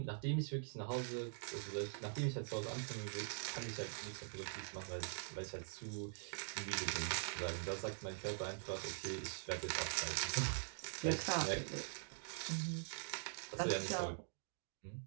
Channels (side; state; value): left; silent; digital silence